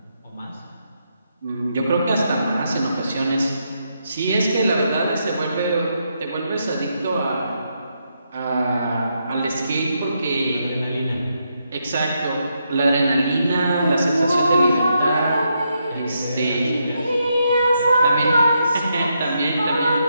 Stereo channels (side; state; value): both; inverted; correlation -0.80